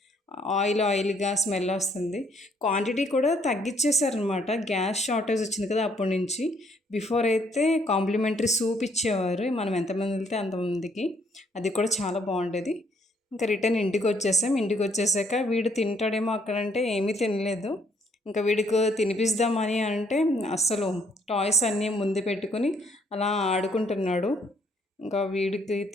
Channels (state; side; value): normal; both; correlation 0.67